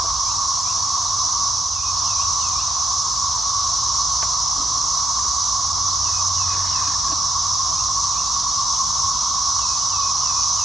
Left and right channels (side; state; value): both; normal; correlation 0.81